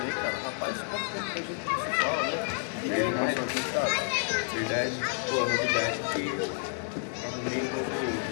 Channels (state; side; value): silent; right; 58 dB below the other